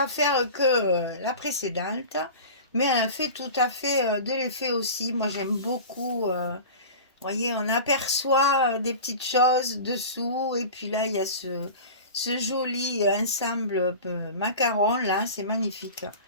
faire que la précédente, mais elle a fait tout à fait de l'effet aussi. Moi, j'aime beaucoup, vous voyez, on aperçoit des petites choses dessous, et puis là, il y a ce joli ensemble macaron, là, c'est magnifique.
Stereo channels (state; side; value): inverted; both; correlation -0.34